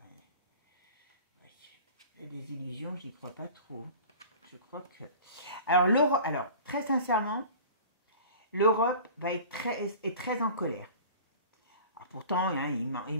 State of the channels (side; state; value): both; inverted; correlation -0.41